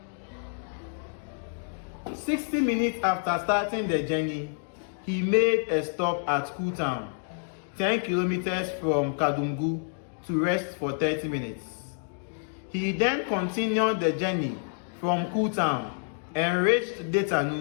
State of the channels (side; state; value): right; silent; digital silence